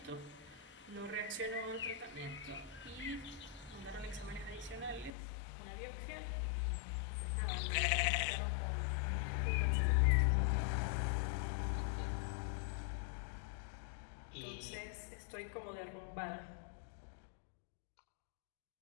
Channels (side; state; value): right; drops out; at 5.1 s